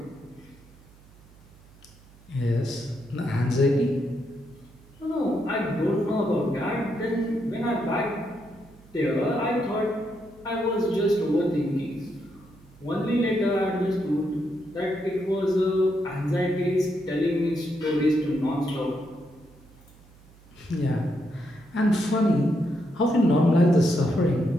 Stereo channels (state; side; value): noise; right; hum, 26 dB below the sound